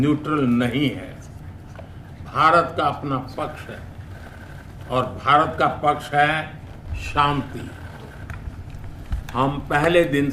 नहीं है. भारत का अपना पक्ष है और भारत का पक्ष है शांति। हम पहले दिन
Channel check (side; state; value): both; identical; correlation 1.00